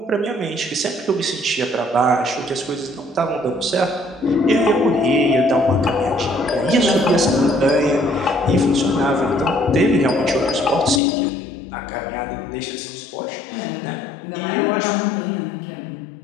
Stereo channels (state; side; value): drops out; right; at 11.0 s